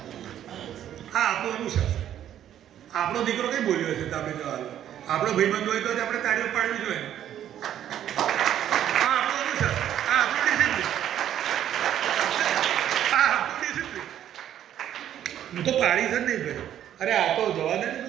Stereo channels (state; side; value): quieter; left; 10.9 dB